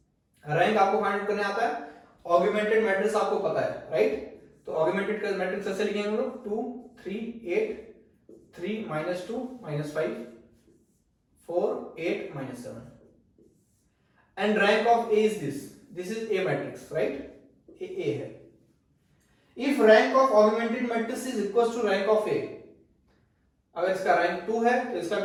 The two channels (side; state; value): both; identical; correlation 1.00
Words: Rank आपको फाइंड आउट करने आता है, ऑगमेंटेड मैट्रिक्स आपको पता है, राइट। तो ऑगमेंटेड मैट्रिक्स ऐसे लिखेंगे हम लोग 2 3 8 3 -2 -5 4 8 -7, and rank of A is this is A matrix, right, A है। If rank of augmented matrix is equal to rank of A, अगर इसका रैंक 2 है तो इसका